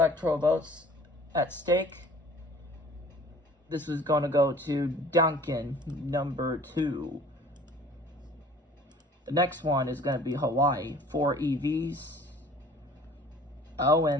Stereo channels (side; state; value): both; normal; correlation 0.49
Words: votes at stake, this is going to go to Duncan, number 2. The next one is going to be Hawaii, 4 EVs.